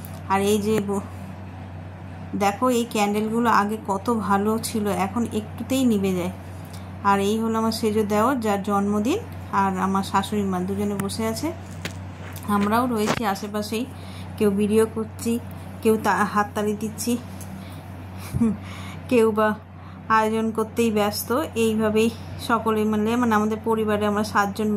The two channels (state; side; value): identical; both; correlation 1.00